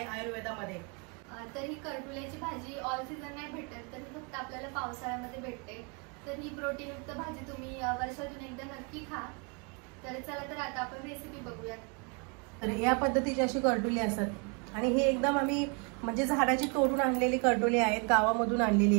आयुर्वेदामध्ये। तर ही करटुल्याची भाजी ऑल सीझन नाही भेटत, तर फक्त आपल्याला पावसाळ्यामध्ये भेटते। तर ही प्रोटीनयुक्त भाजी तुम्ही वर्षातून एकदा नक्की खा। तर चला तर आता आपण रेसिपी बघूयात। तर या पद्धतीची अशी करटुली असतात आणि ही एकदम आम्ही म्हणजे झाडाची तोडून आणलेली करटुली आहेत, गावामधून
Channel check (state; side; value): quieter; left; 34.4 dB